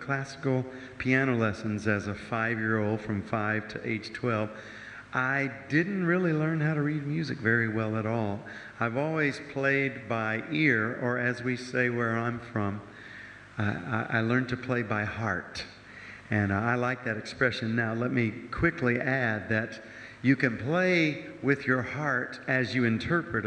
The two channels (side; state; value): both; identical; correlation 1.00